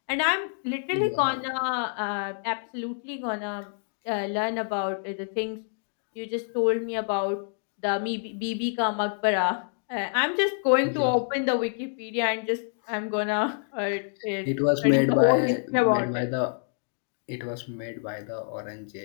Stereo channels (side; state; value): right; silent; digital silence